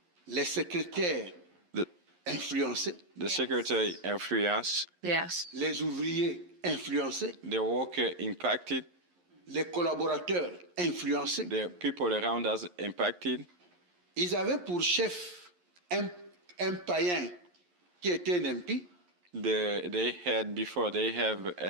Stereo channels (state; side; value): late; left; 11 ms